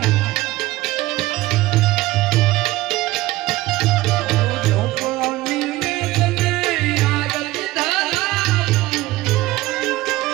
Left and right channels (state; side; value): quieter; left; 18.1 dB